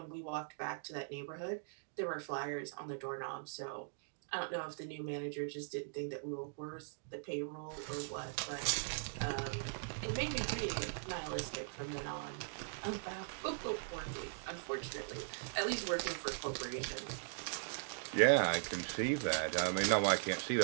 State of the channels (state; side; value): silent; left; digital silence